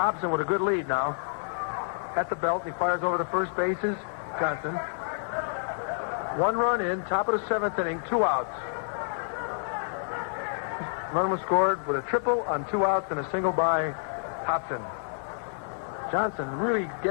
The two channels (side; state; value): right; silent; 59 dB below the other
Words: with a good lead now. At the belt, he fires over the first bases. Johnson. 1 run in, top of the 7th inning, 2 outs. Run was scored with a triple on 2 outs and a single by Hobson. Johnson really